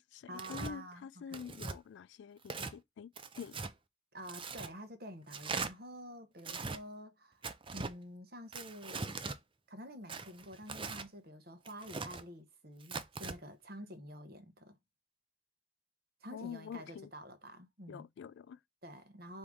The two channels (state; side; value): normal; both; correlation 0.19